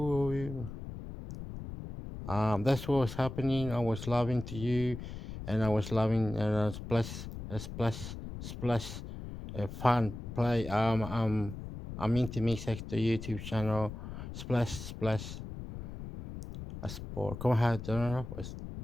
That's what was happening. I was loving to you, and I was loving, and I was splash, fun play. I'm into Mix Extra YouTube channel, splash, a sport. Como é que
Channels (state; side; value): noise; left; rumble, 9 dB below the sound